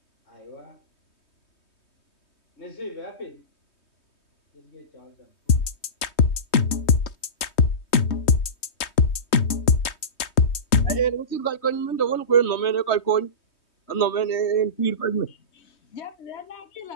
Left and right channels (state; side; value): late; right; 3.2 ms